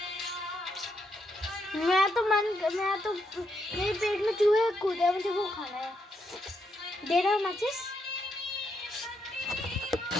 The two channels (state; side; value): normal; both; correlation 0.79